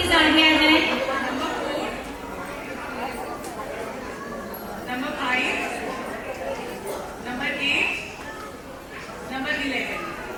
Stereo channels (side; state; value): both; identical; correlation 1.00